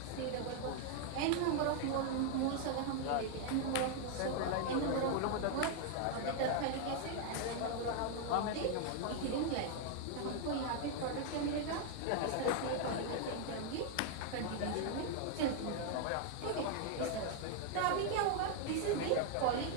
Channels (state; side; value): different; both; correlation 0.00